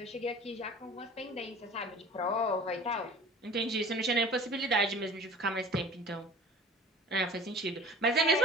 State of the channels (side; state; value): both; normal; correlation 0.43